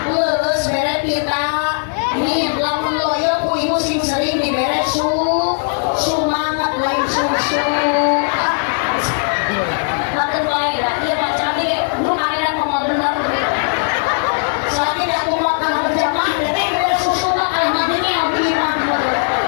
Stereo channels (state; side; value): silent; right; 65 dB below the other